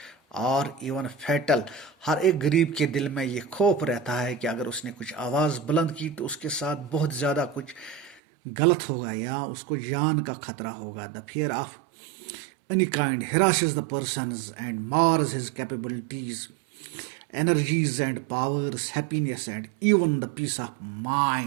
or even fatal. ہر ایک غریب کے دل میں یہ خوف رہتا ہے کہ اگر اس نے کچھ آواز بلند کی تو اس کے ساتھ بہت زیادہ کچھ غلط ہوگا یا اس کو جان کا خطرہ ہوگا. the fear of any kind harasses the persons and mars his capabilities, energies and powers, happiness and even the peace of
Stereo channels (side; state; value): left; drops out; at 8.2 s